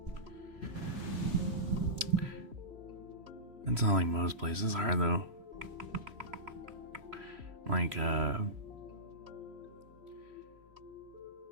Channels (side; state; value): left; late; 3.1 ms